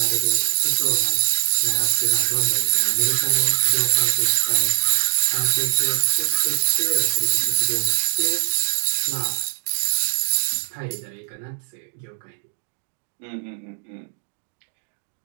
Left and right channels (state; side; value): silent; left; digital silence